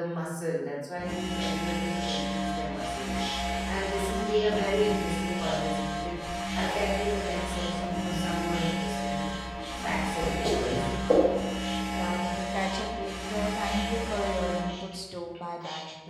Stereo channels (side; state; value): both; identical; correlation 1.00